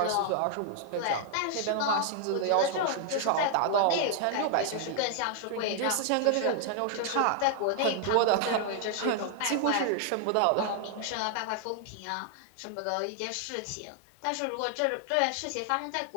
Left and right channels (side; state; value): both; different; correlation 0.00